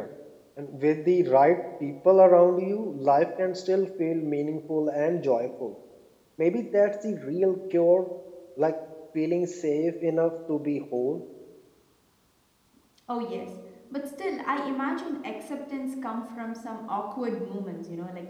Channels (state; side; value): identical; both; correlation 1.00